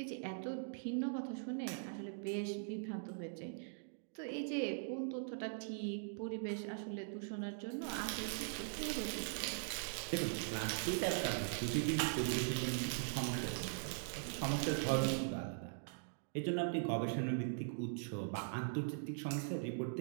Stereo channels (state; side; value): silent; left; digital silence